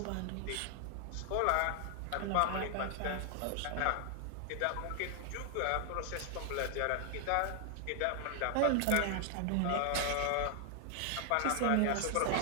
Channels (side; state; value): both; different; correlation 0.00